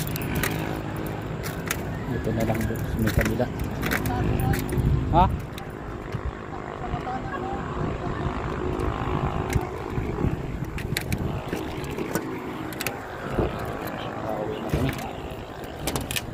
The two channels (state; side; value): identical; both; correlation 1.00